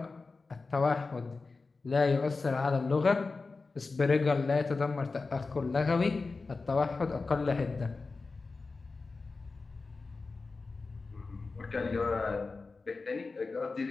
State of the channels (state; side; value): quieter; right; 4.0 dB